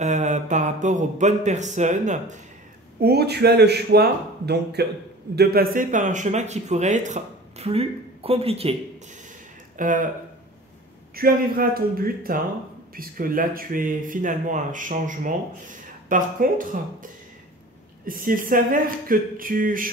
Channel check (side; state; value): both; normal; correlation 0.41